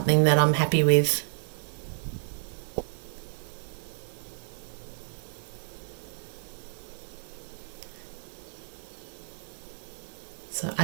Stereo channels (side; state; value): left; silent; digital silence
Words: that I'm happy with. So